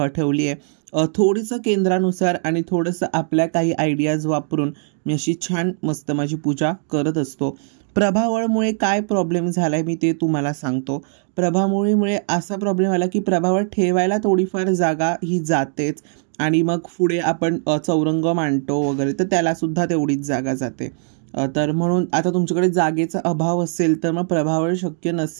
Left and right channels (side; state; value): left; silent; 63 dB below the other